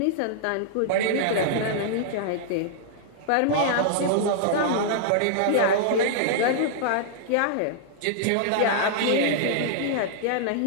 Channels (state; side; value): different; both; correlation -0.01